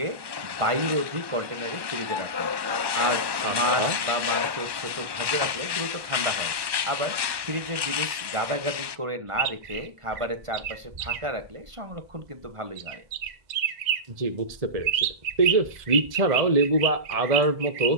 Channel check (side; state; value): left; late; 1.2 ms